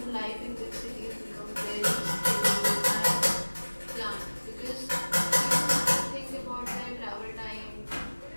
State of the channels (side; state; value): both; inverted; correlation -1.00